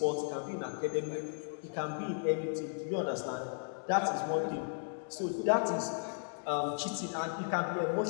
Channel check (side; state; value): right; silent; digital silence